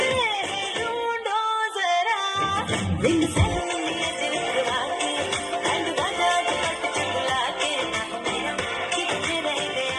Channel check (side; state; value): both; identical; correlation 1.00